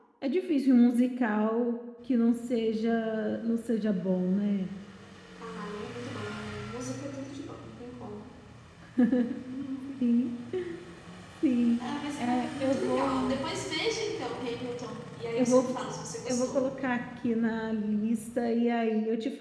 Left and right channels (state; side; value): identical; both; correlation 1.00